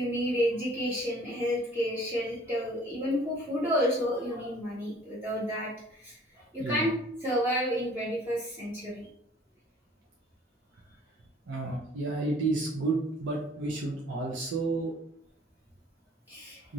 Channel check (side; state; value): both; normal; correlation 0.54